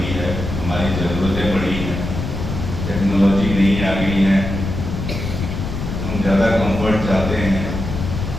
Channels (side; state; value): left; noise; rumble, 5 dB below the sound